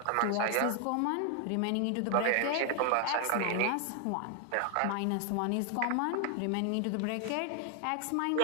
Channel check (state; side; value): different; both; correlation 0.00